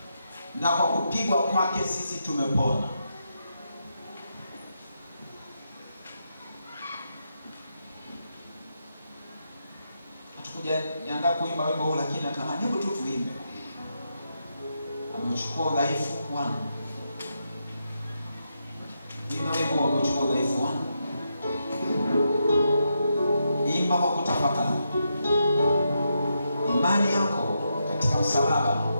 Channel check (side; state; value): both; inverted; correlation -0.83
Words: na kwa kupigwa kwake sisi tumepona. Hatukuja niandaa kuimba wimbo huu, lakini natamani hebu tu tuimbe. Amechukua udhaifu wangu. Imba wimbo wa kuchukua udhaifu wangu. Imba kwa kutafakari. Imani yako katika msalaba